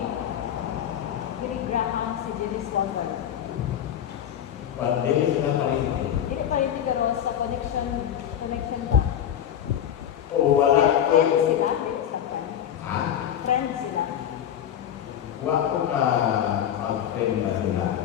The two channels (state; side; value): quieter; right; 10.0 dB